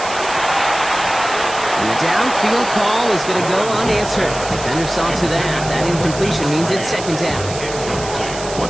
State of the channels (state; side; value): noise; right; hiss, 11 dB below the sound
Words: And the downfield call is going to go unanswered. Defender saw to that. That incompletion means it's 2nd down.